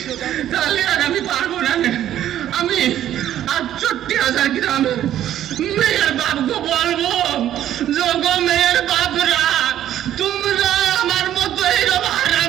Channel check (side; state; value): left; quieter; 11.7 dB